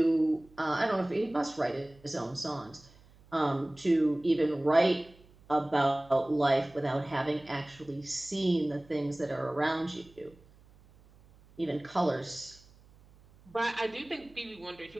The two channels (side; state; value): right; noise; hum, 27 dB below the sound